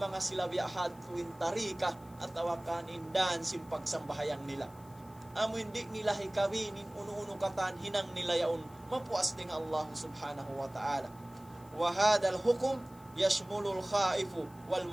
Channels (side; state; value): left; noise; hiss, 26 dB below the sound